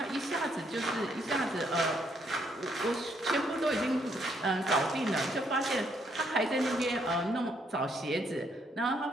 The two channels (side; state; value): both; normal; correlation 0.72